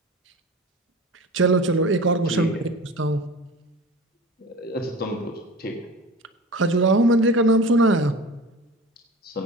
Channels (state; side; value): normal; both; correlation 0.36